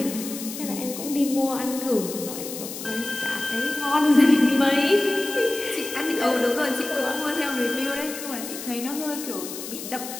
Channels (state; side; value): noise; left; hiss, 9 dB below the sound